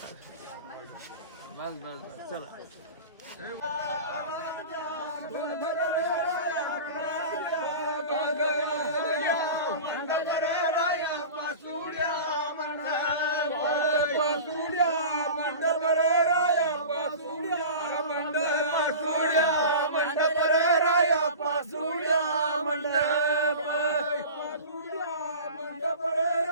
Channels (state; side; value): inverted; both; correlation -0.34